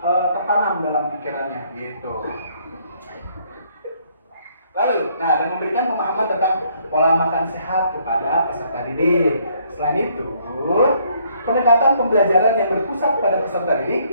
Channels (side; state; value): both; inverted; correlation -0.66